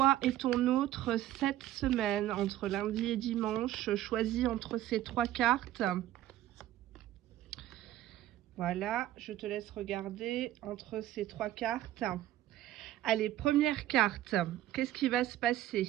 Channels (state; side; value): quieter; left; 13.7 dB